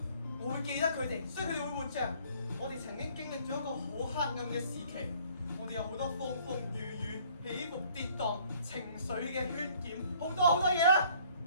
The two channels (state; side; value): inverted; both; correlation -0.58